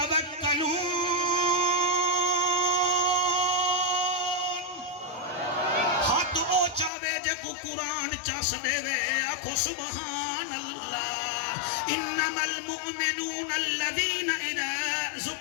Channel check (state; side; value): drops out; right; at 6.9 s